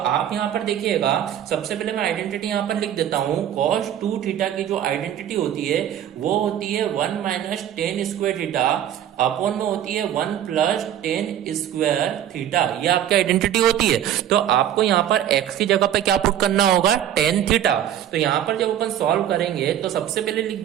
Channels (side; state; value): left; quieter; 10.8 dB